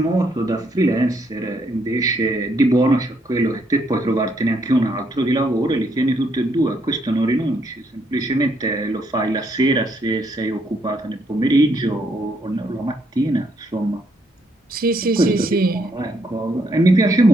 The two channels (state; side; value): normal; both; correlation 0.73